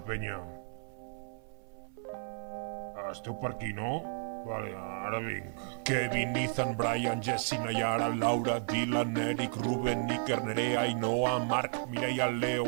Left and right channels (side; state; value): left; silent; 56 dB below the other